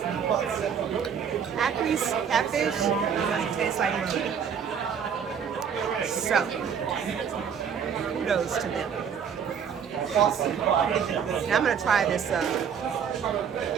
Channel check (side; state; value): left; quieter; 7.4 dB